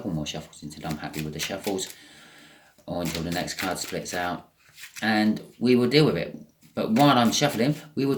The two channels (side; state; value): both; identical; correlation 1.00